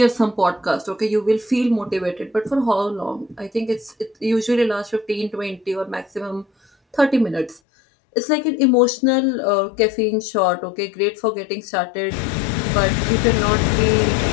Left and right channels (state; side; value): drops out; right; at 7.6 s